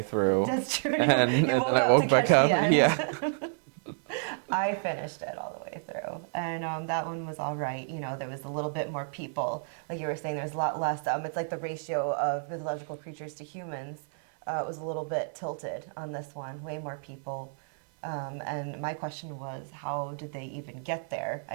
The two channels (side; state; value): left; silent; 58 dB below the other